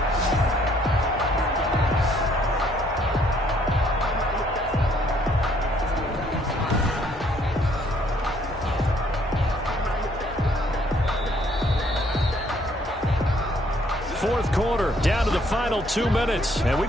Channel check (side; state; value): both; normal; correlation 0.65